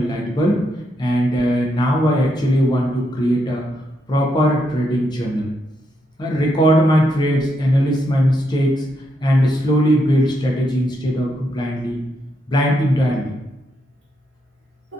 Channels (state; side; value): normal; both; correlation 0.80